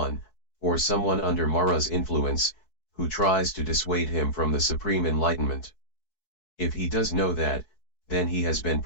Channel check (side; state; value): right; late; 4.6 ms